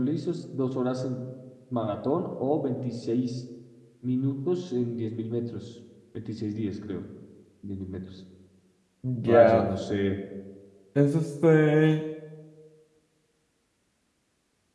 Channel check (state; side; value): identical; both; correlation 1.00